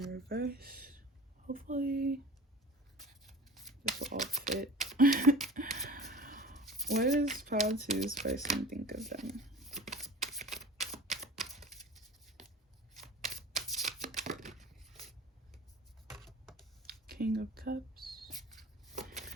reverse. Hopefully this will all fit. What does pile 2's person think of them? King of Cups.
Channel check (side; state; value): both; normal; correlation 0.38